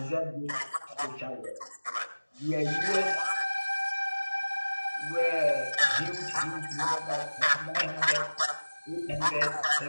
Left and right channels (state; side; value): inverted; both; correlation -1.00